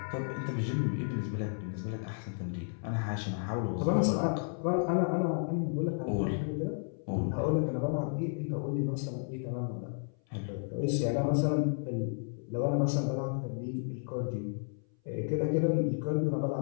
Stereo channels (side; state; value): right; silent; 56 dB below the other